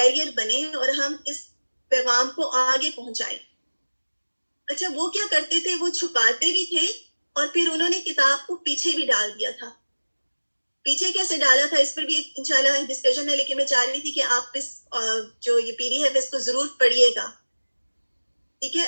بنیں اور ہم اس پیغام کو آگے پہنچائیں. اچھا، وہ کیا کرتے تھے؟ وہ چھپاتے بھی تھے اور پھر انہوں نے کتاب کو پیچھے بھی ڈال دیا تھا. پیچھے کیسے ڈالا تھا اس پر بھی انشاءاللہ ڈسکشن ہے، لیکن میں چاہ رہی تھی کہ آپ اس جو یہ پیری ہے اس کو ضرور پڑھیے گا. ٹھیک ہے؟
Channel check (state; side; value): inverted; both; correlation -1.00